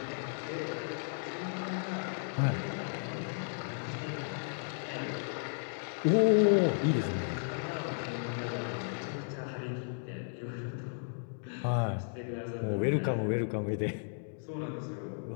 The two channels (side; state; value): right; silent; digital silence